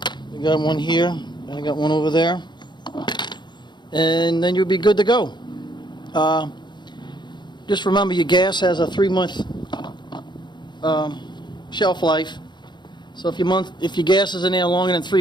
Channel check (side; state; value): right; late; 0.22 ms